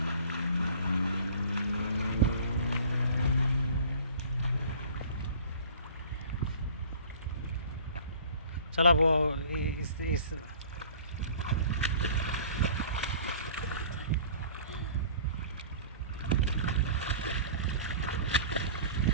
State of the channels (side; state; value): both; inverted; correlation -0.47